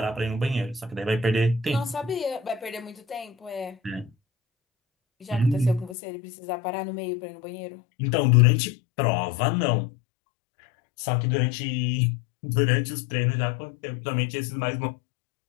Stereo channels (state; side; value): drops out; right; at 6.0 s